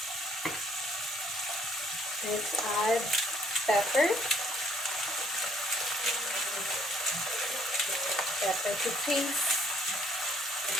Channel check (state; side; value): normal; both; correlation 0.64